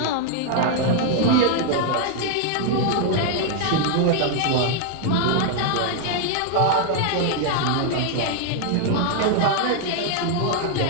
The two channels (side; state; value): both; different; correlation 0.00